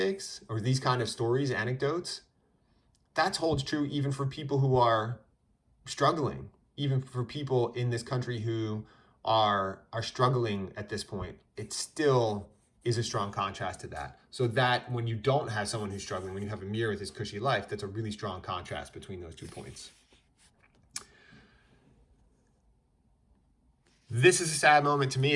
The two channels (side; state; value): both; identical; correlation 1.00